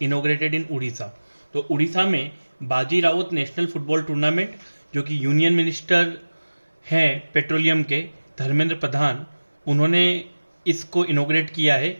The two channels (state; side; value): inverted; both; correlation -1.00